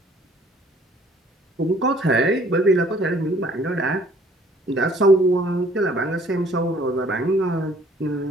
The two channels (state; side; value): normal; both; correlation 0.58